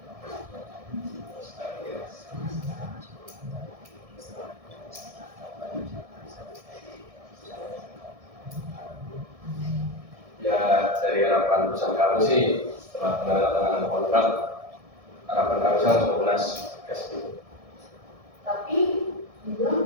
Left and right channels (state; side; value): late; left; 1.7 ms